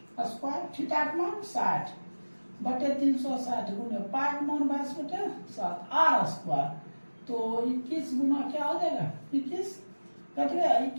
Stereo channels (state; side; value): inverted; both; correlation -1.00